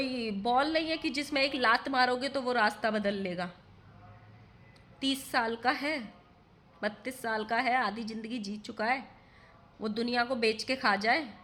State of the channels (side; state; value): both; identical; correlation 1.00